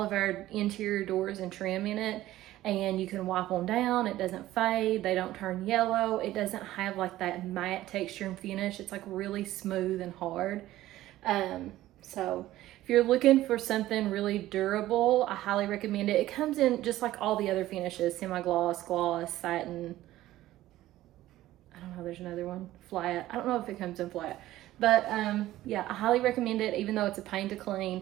of our interior doors and trim in it, and you can wipe them down. It doesn't fade. They don't turn yellow. It doesn't have like that matte texture and finish. It's like really smooth and hard. So if you're looking for something really durable, I highly recommend it. It comes in just like all the other finishes: semi-gloss, gloss, satin. I don't know, there's another one, flat. I don't know if it comes in flat, but yeah, I highly recommend it. Even though it's a pain to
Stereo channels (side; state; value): left; quieter; 15.2 dB